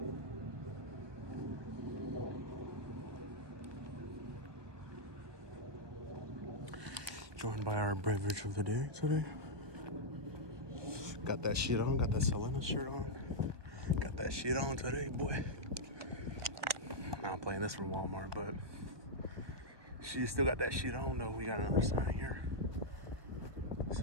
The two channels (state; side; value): late; left; 1.2 ms